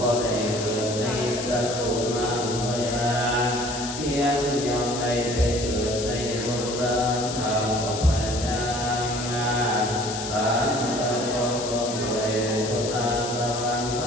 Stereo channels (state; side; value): noise; left; hiss, 7 dB below the sound